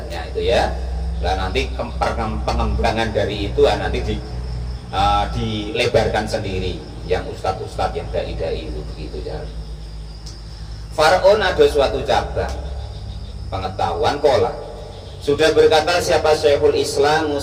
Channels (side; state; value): both; identical; correlation 1.00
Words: itu ya. Nah nanti pengembangan dari itu nanti dilebarkan sendiri yang ustadz-ustadz yang dai-dai itu begitu ya. Faraon ada suatu cabang pengetahuan kola. Sudah berkata siapa Syekhul Islam,